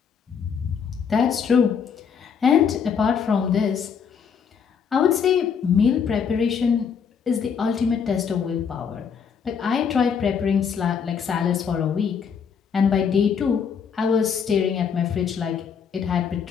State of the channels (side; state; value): right; quieter; 6.8 dB